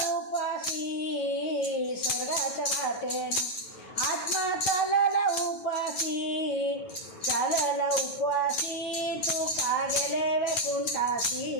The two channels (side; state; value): right; late; 9.2 ms